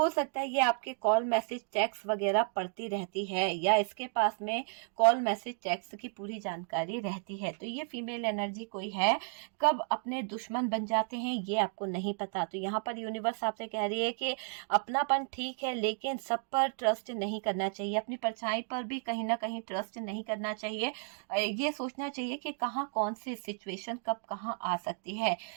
सकता है ये आपके कॉल मैसेज टेक्स्ट वगैरह पढ़ती रहती है, या इसके पास में कॉल मैसेज टेक्स्ट की पूरी जानकारी रहती है। तो ये फीमेल एनर्जी कोई है, कब अपने दुश्मन बन जाते हैं ये आपको नहीं पता। तो यहाँ पर यूनिवर्स आपसे कह रही है कि अपनापन ठीक है, लेकिन सब पर ट्रस्ट नहीं करना चाहिए, अपनी परछाई पर भी कहीं ना कहीं ट्रस्ट नहीं करना चाहिए। ये सोचना चाहिए कि कहाँ कौन सी सिचुएशन कब कहाँ आ सकती है।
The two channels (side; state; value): left; silent; 56 dB below the other